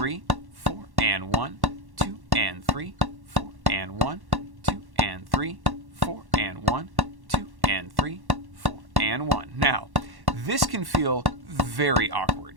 4, and 1, 2, and 3, 4, and 1, 2, and 3, 4, and 1, 2, and 3, 4, and 1. Now, this can feel very awkward.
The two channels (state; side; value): late; left; 1.1 ms